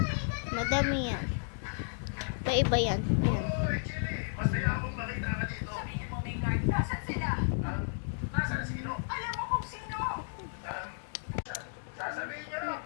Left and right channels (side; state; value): right; silent; digital silence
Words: Madami yan. Iba-iba yan. Ayan.